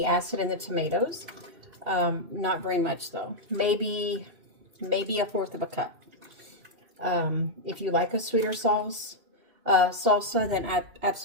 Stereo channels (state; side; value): late; left; 2.7 ms